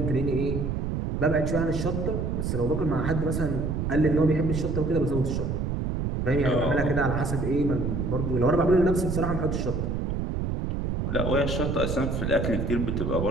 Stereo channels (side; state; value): right; noise; rumble, 1 dB below the sound